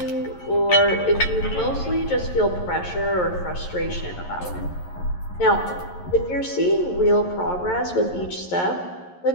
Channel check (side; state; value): right; late; 11 ms